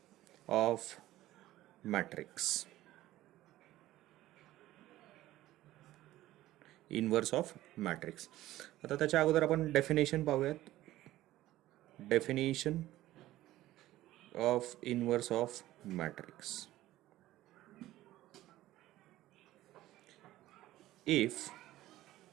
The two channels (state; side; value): quieter; left; 15.4 dB